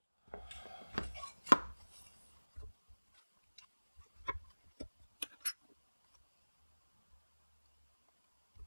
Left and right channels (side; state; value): both; inverted; correlation -1.00